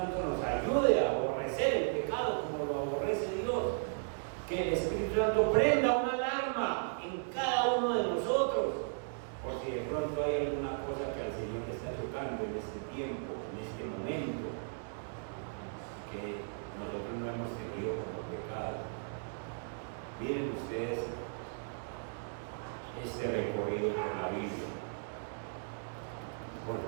nos ayude a aborrecer el pecado como lo aborrece Dios. Que el Espíritu Santo prenda una alarma en cada uno de nosotros, por si de pronto hay alguna cosa que al Señor le está tocando en este tiempo, en este momento, que nosotros no hemos tenido como pecado. Miren ustedes este recorrido por la Biblia. Por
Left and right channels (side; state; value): left; silent; digital silence